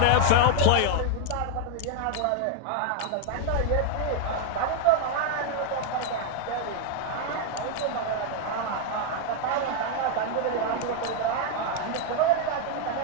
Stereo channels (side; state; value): both; different; correlation 0.00